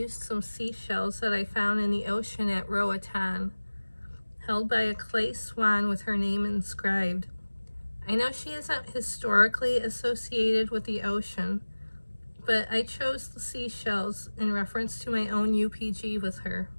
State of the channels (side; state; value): both; inverted; correlation -1.00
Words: some seashells that I found in the ocean at Roatan, held by a clay swan with her name inscribed. I know she isn't historically associated with the ocean, but I chose the seashells in reference to my own UPG with her.